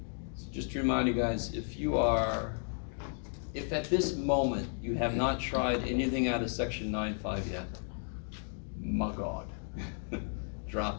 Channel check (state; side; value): silent; right; 55 dB below the other